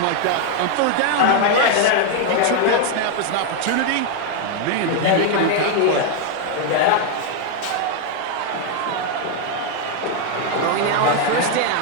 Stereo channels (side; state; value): both; different; correlation 0.00